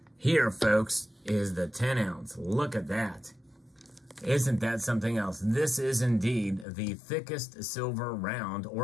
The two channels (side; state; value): right; drops out; at 6.7 s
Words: Here, folks, is the 10 ounce. Look at that. Isn't that something else? This is indeed the thickest silver round